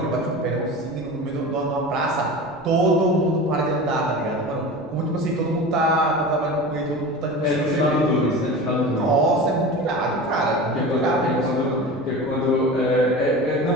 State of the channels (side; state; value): right; noise; rumble, 24 dB below the sound